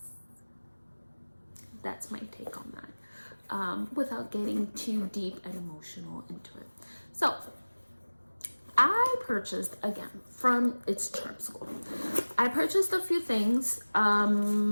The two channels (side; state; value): both; inverted; correlation -1.00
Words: that's my take on that, without getting too deep and emotional into it. So I purchased, again, from It's Charm School, I purchased a few things.